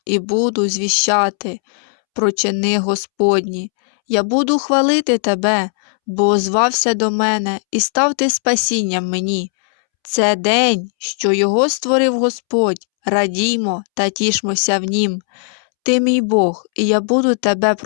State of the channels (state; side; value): silent; right; 68 dB below the other